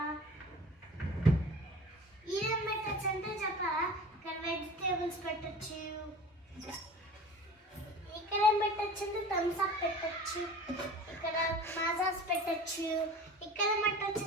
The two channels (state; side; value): normal; both; correlation 0.40